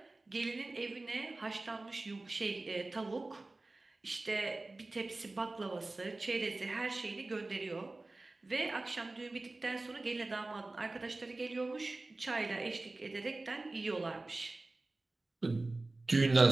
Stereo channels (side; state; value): left; quieter; 3.1 dB